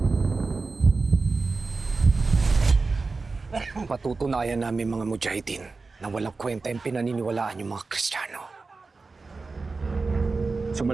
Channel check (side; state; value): left; quieter; 4.0 dB